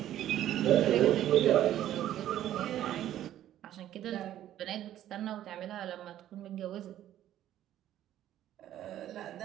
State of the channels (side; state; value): left; quieter; 12.2 dB